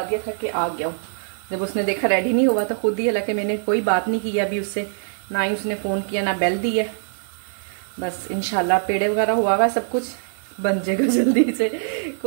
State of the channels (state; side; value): silent; left; 63 dB below the other